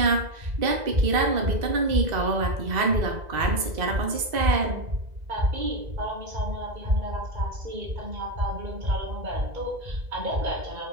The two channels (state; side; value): late; left; 2.0 ms